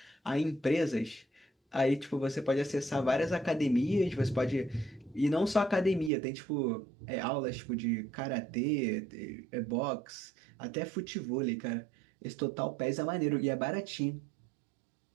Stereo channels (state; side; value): drops out; left; at 6.1 s